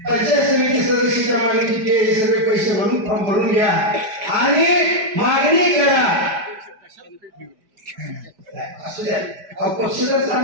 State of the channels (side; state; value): left; late; 5.1 ms